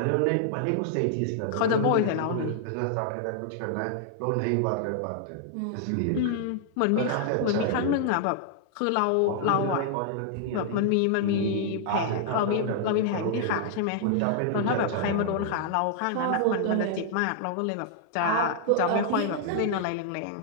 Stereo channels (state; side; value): different; both; correlation -0.01